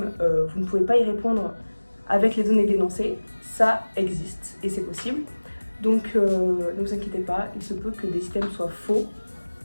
vous ne pouvez pas y répondre avec les données d'énoncé, ça existe et c'est possible. Donc ne vous inquiétez pas, il se peut que des items soient faux,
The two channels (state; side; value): inverted; both; correlation -1.00